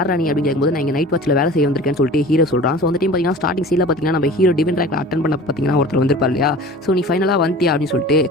ராணி அப்படின்னு கேட்கும்போது, நான் இங்கே நைட் வாட்சில் வேலை செய்ய வந்திருக்கேன்னு சொல்லிட்டு ஹீரோ சொல்கிறான். ஸோ அந்த டைம் பார்த்தீங்கன்னா ஸ்டார்டிங் சீனில் பார்த்தீங்கன்னா நம்ம ஹீரோ டிவென்ட் ரேங்க்ல அட்டன் பண்ண பார்த்தீங்கன்னா ஒருத்தர் வந்திருப்பார் இல்லையா. ஸோ நீ ஃபைனலாக வந்துட்டியா அப்படின்னு சொல்லிட்டு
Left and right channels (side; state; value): both; normal; correlation 0.41